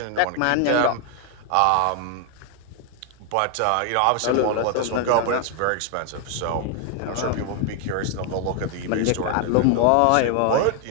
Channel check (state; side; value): different; both; correlation 0.00